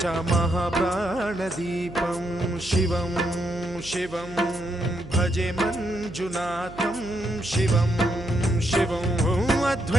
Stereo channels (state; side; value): noise; right; hum, 16 dB below the sound